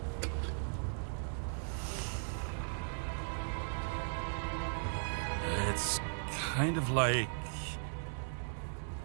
It's kind of like...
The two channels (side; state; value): left; silent; digital silence